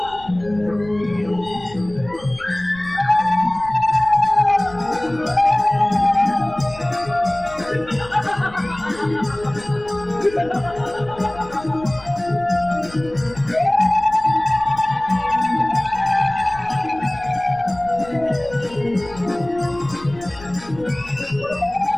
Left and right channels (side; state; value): left; noise; rumble, 19 dB below the sound